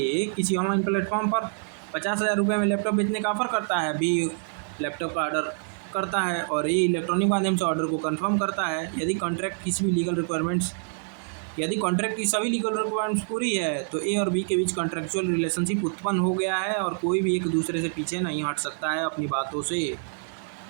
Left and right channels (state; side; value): silent; left; 61 dB below the other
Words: किसी online platform पर 50,000 रुपये में laptop बेचने का offer करता है, बी लैपटॉप का ऑर्डर करता है और ए इलेक्ट्रॉनिक माध्यम से ऑर्डर को कंफर्म करता है. यदि कॉन्ट्रैक्ट किसी भी लीगल रिक्वायरमेंट्स यदि कॉन्ट्रैक्ट की सभी लीगल रिक्वायरमेंट्स पूरी है तो ए और बी के बीच कॉन्ट्रैक्चुअल रिलेशनशिप उत्पन्न हो गया है और कोई भी एक दूसरे से पीछे नहीं हट सकता है अपनी बातों से.